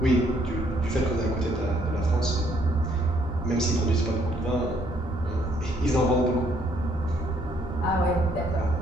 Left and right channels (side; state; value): left; noise; rumble, 14 dB below the sound